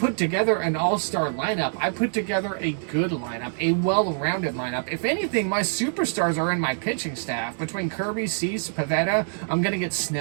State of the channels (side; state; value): left; silent; digital silence